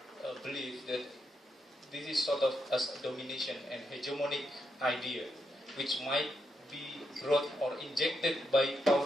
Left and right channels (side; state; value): both; normal; correlation 0.81